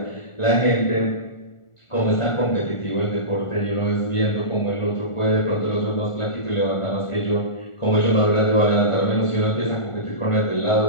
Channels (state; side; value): late; right; 1.5 ms